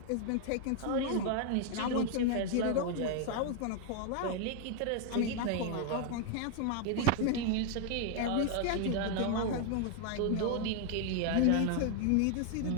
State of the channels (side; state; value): both; different; correlation 0.00